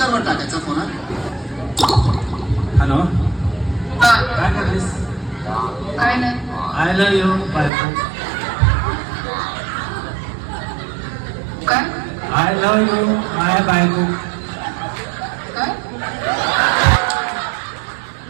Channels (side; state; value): left; drops out; at 7.7 s